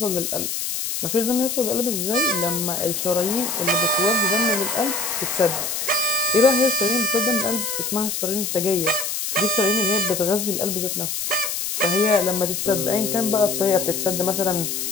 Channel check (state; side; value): noise; left; hiss, 3 dB below the sound